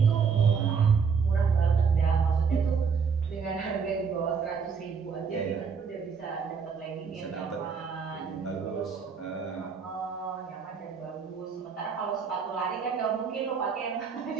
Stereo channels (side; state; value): left; quieter; 5.9 dB